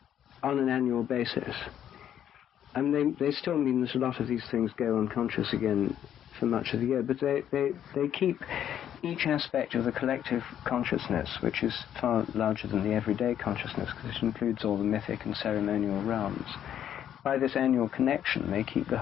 on an annual basis. I mean, they still mean that a lot of these things go unconscious again for much of the year, but they keep each aspect of the collective consciousness, which is far larger than the everyday consciousness, because it includes all the mythic and ceremonial realms. By this annual connection, they keep the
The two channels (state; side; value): quieter; right; 10.1 dB